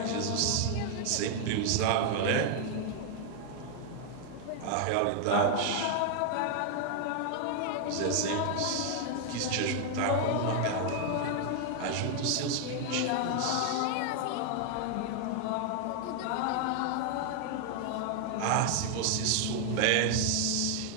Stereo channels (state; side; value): different; both; correlation 0.00